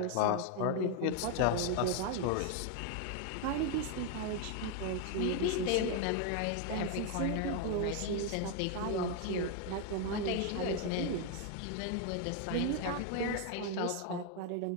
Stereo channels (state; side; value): different; both; correlation 0.01